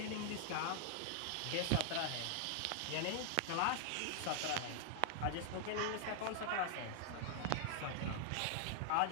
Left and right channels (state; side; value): different; both; correlation -0.01